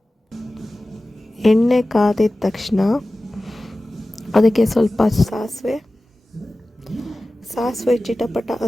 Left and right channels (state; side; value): normal; both; correlation 0.96